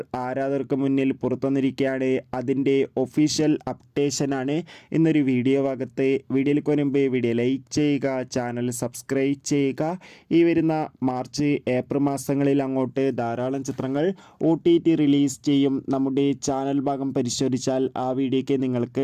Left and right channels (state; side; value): identical; both; correlation 1.00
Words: ആരാധകർക്ക് മുന്നിൽ പുറത്തുവന്നിരിക്കുകയാണ്. അതിൻ്റെ ഒഫീഷ്യൽ അപ്ഡേഷനാണ് ഇന്നൊരു വീഡിയോ ഭാഗത്ത്. വീഡിയോയിൽ മുൻപ് വീഡിയോ ലൈക്ക് ചെയ്യുക, ചാനൽ സബ്സ്ക്രൈബ് ചെയ്യുക. ഈ വരുന്ന മാർച്ച് ഏപ്രിൽ മാസങ്ങളിൽ അങ്ങോട്ട് ധാരാളം ചിത്രങ്ങൾ OTT റിലീസ് ചെയ്യും. നമ്മുടെ ചാനൽ ഭാഗം പരിശോധിച്ചാൽ ആ വീഡിയോയ്ക്ക് നിങ്ങൾക്ക്